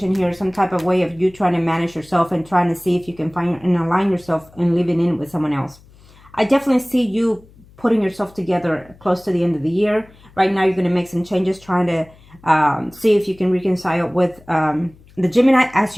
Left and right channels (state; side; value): noise; left; hum, 26 dB below the sound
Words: here, some type of way of you trying to manage yourself and trying to see if you can find and align yourself and living in with someone else. I definitely see you putting yourself together close to the end of the year. Right now, you're going to make some changes, trying to see if you can reconcile with the Gemini, as